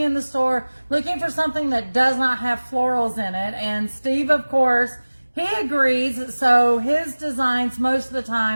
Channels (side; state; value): both; inverted; correlation -1.00